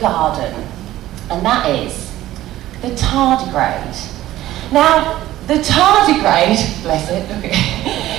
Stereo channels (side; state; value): left; quieter; 14.7 dB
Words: garden. And that is the tardigrade. Now, the tardigrade, bless it, look at